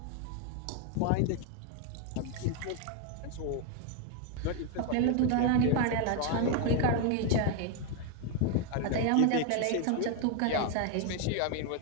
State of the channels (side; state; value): both; different; correlation 0.01